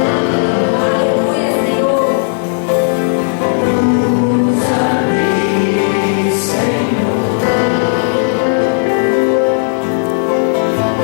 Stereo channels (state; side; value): silent; right; digital silence